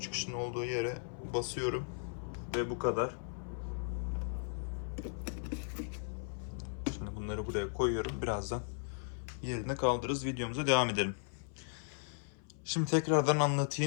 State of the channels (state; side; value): silent; right; 53 dB below the other